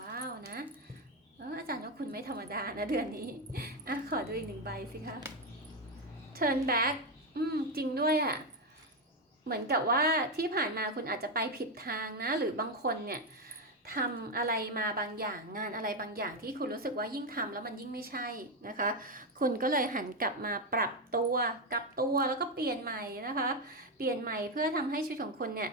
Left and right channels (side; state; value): both; normal; correlation 0.08